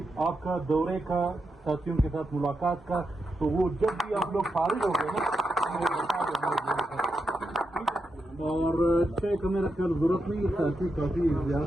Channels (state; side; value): normal; both; correlation 0.85